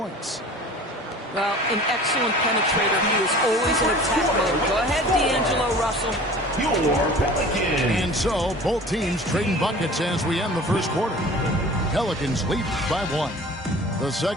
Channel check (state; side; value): normal; both; correlation 0.43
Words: Well, an excellent penetrator. He is always in attack mode. Go ahead, D'Angelo Russell. And so, both teams trading buckets as we end the first quarter. Pelicans lead by 1. The